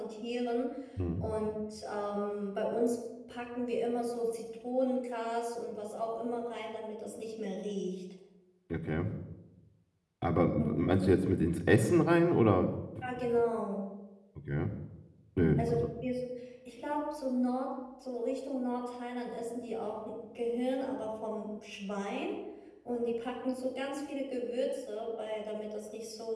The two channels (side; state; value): both; identical; correlation 1.00